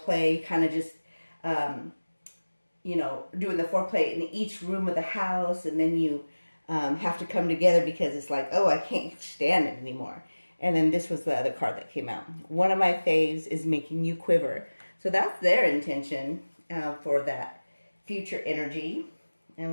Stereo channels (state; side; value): inverted; both; correlation -1.00